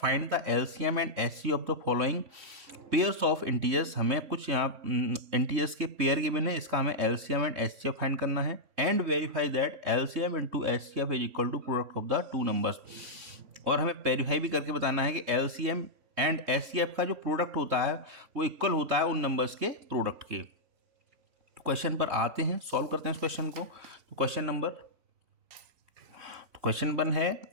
the LCM and HCF of the following pairs of integers. हमें कुछ यहाँ इंटीजर्स के पेयर गिवन है, इसका हमें एलसीएम एंड एचसीएफ फाइंड करना है and verify that LCM into HCF is equal to product of the two numbers. और हमें वेरीफाई भी करके बताना है कि एलसीएम एंड एचसीएफ का जो प्रोडक्ट होता है वो इक्वल होता है उन नंबर्स के प्रोडक्ट के। तो क्वेश्चन पर आते हैं, सॉल्व करते हैं इस क्वेश्चन को। तो क्वेश्चन 1 है,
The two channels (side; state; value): left; late; 3.2 ms